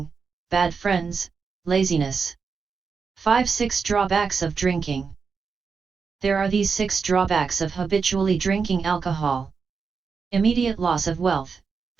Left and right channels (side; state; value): left; quieter; 5.4 dB